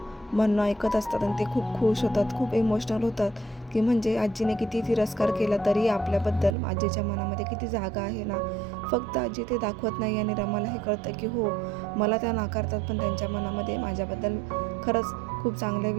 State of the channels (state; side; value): drops out; left; at 6.6 s